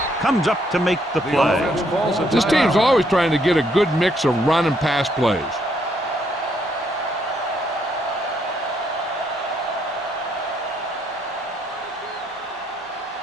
comes up to make the play. This team's always trying to get a good mix of run and pass plays.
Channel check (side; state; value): both; normal; correlation 0.72